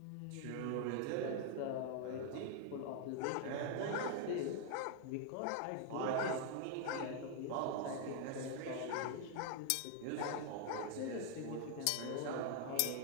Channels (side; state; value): both; different; correlation 0.00